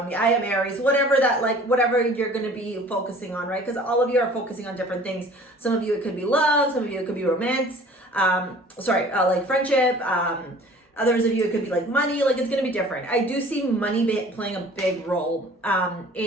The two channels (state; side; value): normal; both; correlation 0.48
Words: me. I am Aries, whatever you're going to be focusing on, right? Because all of you are focusing on different things. Some of you, it could be love. Some of you, it could be romance. Like friendship. Others of you, it could be like money. Like, it's going to be different. I do see money playing a big role